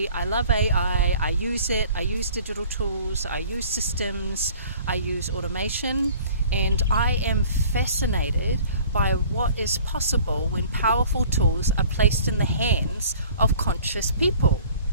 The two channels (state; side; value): inverted; both; correlation -0.50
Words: I love AI, I use it, I use digital tools, I use systems, I use automation, and I am fascinated by what is possible when powerful tools are placed in the hands of conscious people.